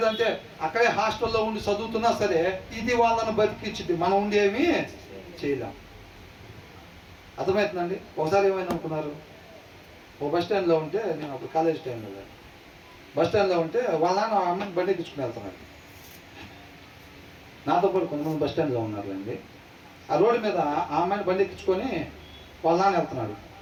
అక్కడే హాస్టల్లో ఉండి చదువుతున్నా సరే ఇది వాళ్ళని బతికిచ్చింది. మనం ఉండి ఏమీ చేయలేం. అర్థమవుతుందండి? ఒకసారి ఏమైనా అనుకున్నారు, ఓ బస్ స్టాండ్లో ఉంటే, నేను అప్పుడు కాలేజ్ టైంలో బస్ స్టాండ్లో ఉంటే వాళ్ళ నాన్న అమ్మని బండి ఎక్కించుకుని వెళ్తున్నాడు. నాతో పాటు కొంతమంది బస్ స్టాండ్లో ఉన్నారులేండి. ఆ రోడ్డు మీద ఆ అమ్మాయిని బండి ఎక్కించుకొని వాళ్ళ నాన్న వెళ్తున్నాడు.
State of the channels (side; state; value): both; identical; correlation 1.00